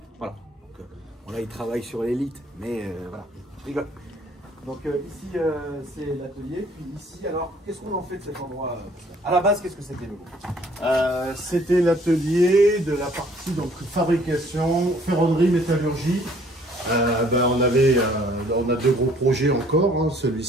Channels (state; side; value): normal; both; correlation 0.59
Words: Voilà. Donc, bon, là, il travaille sur l'élite, mais voilà, je rigole. Donc ici, c'est l'atelier. Puis ici, alors, qu'est-ce qu'on en fait de cet endroit? À la base, qu'est-ce que c'était, le C'était l'atelier de la partie donc fabrication, ferronnerie, métallurgie. On a 2 gros projets encore, hein,